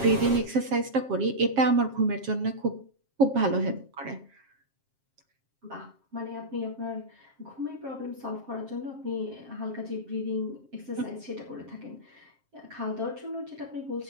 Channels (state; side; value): late; left; 7.5 ms